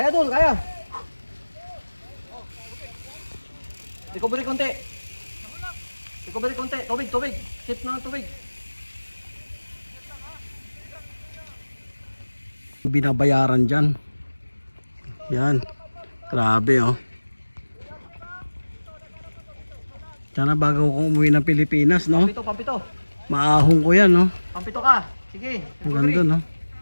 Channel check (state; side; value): inverted; both; correlation -1.00